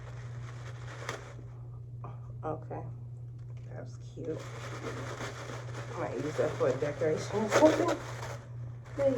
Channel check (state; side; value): identical; both; correlation 1.00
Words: Okay, that's cute. I might use that for a decoration or something.